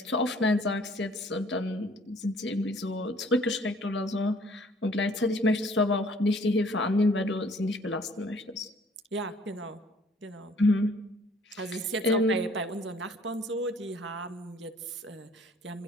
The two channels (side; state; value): both; normal; correlation 0.58